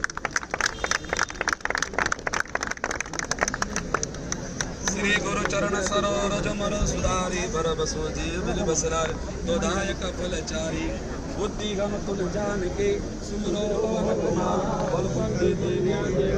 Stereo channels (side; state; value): both; identical; correlation 1.00